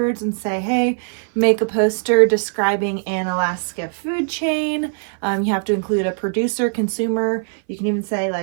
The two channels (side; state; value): left; silent; 60 dB below the other